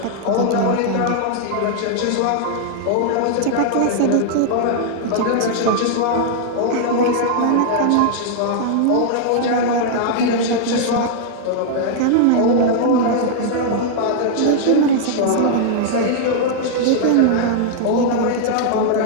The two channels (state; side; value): different; both; correlation -0.01